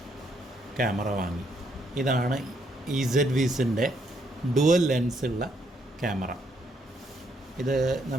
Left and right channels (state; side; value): normal; both; correlation 0.73